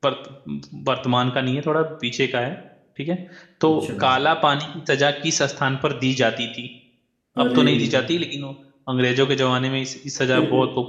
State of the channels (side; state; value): both; identical; correlation 1.00